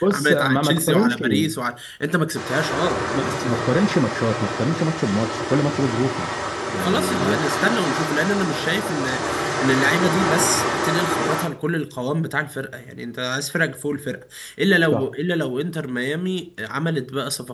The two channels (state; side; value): identical; both; correlation 1.00